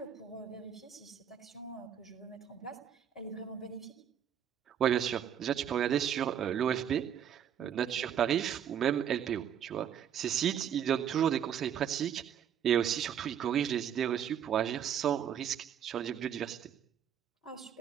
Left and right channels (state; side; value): quieter; left; 9.1 dB